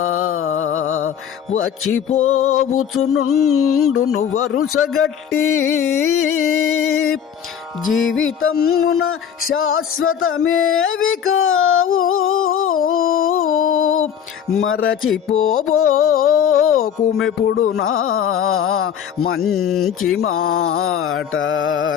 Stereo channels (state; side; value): quieter; right; 8.5 dB